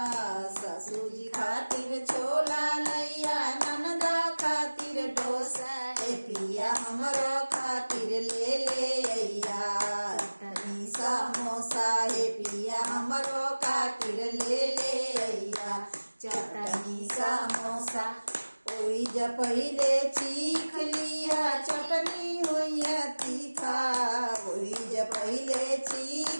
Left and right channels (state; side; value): inverted; both; correlation -1.00